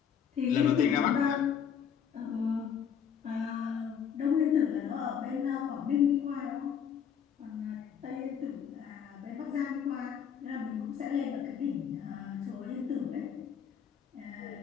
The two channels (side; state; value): right; quieter; 7.9 dB